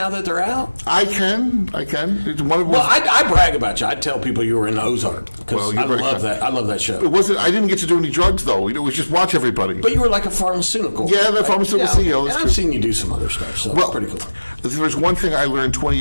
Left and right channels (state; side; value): inverted; both; correlation -1.00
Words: that they're out? I can. It's one of Well, I brag about you. I tell people you were in Ozark because I love that. I love that show. It wasn't. I didn't get to do any drugs, though. It was just watch everybody. But you were like a pharmaceutical. Yeah, the pharmaceutical CEO. And I've seen you do some other stuff, so it's pretty cool. If there's one thing I learned 20